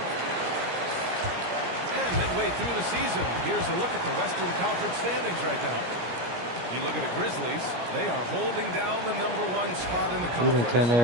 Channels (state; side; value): late; left; 17 ms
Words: And midway through the season, here's a look at the Western Conference standings right now. You look at the Grizzlies, they are holding down the #1 spot in the We done conference. turn